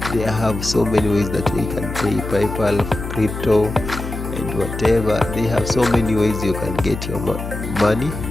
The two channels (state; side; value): noise; left; hum, 7 dB below the sound